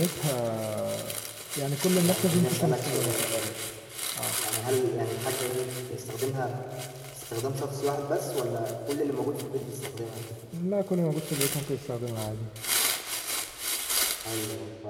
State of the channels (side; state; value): both; identical; correlation 1.00